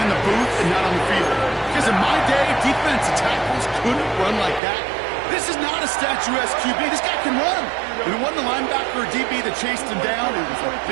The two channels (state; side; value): drops out; left; at 4.6 s